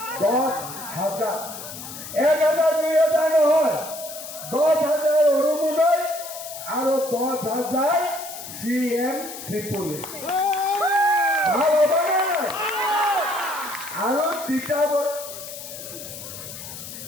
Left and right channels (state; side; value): noise; left; hiss, 11 dB below the sound